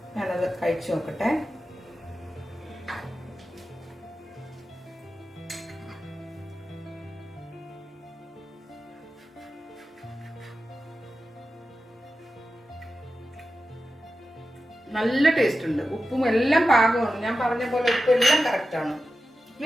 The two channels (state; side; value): normal; both; correlation 0.92